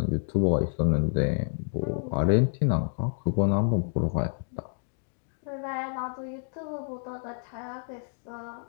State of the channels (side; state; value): right; silent; digital silence